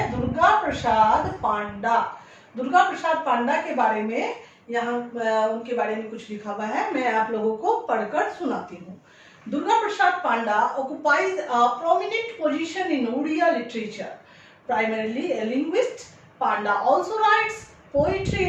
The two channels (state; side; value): identical; both; correlation 1.00